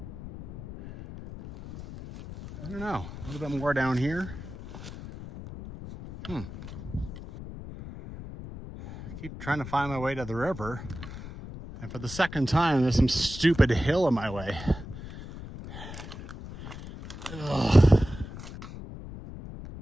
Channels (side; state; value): left; noise; rumble, 12 dB below the sound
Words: I don't know. A little bit more down here. I keep trying to find my way to the river. And for the second time, there's some stupid hill in my way. Ugh.